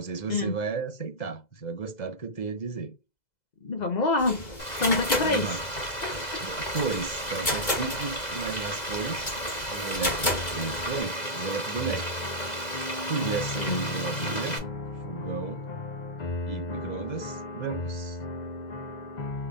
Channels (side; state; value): right; late; 2.0 ms